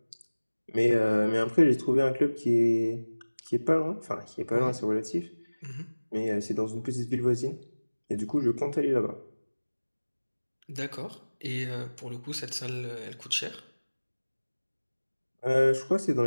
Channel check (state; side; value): inverted; both; correlation -1.00